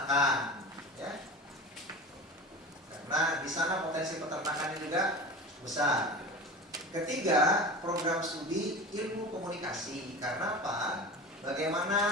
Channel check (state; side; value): normal; both; correlation 0.32